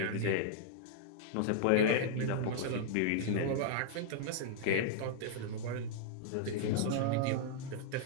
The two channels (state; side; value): different; both; correlation -0.01